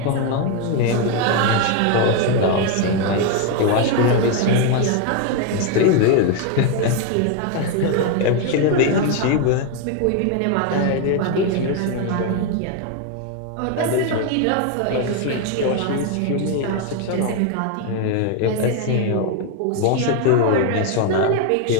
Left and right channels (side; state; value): both; different; correlation 0.01